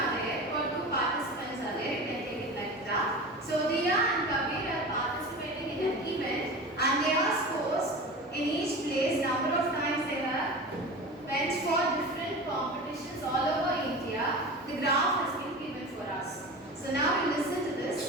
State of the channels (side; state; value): both; normal; correlation 0.32